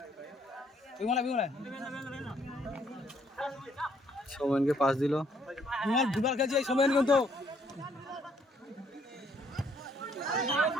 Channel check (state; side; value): normal; both; correlation 0.67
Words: বিমলা সোমেনকে পাস দিল বিমল দুবার খেলছে এই সময় কিন্তু